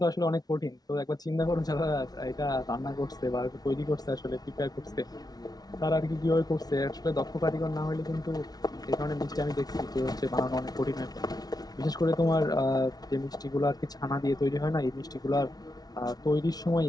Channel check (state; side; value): late; right; 0.19 ms